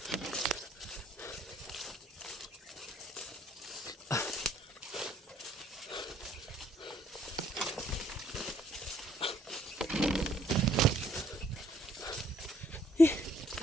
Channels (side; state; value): both; normal; correlation 0.64